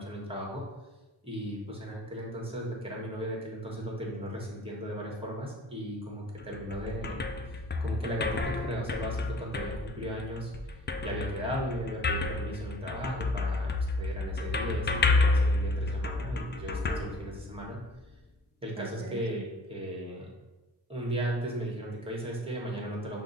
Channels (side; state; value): both; normal; correlation 0.50